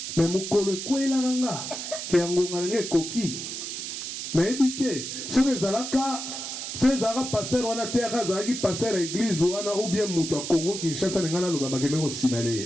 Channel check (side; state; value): right; noise; hiss, 6 dB below the sound